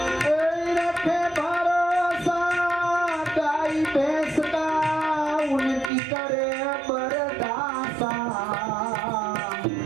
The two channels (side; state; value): left; drops out; at 5.9 s